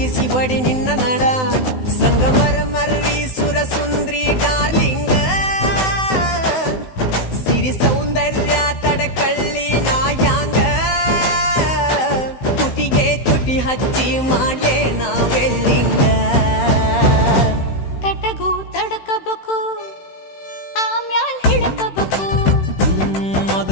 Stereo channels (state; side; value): late; right; 16 ms